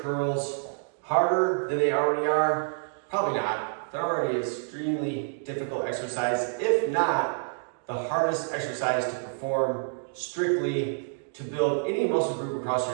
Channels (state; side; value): silent; left; digital silence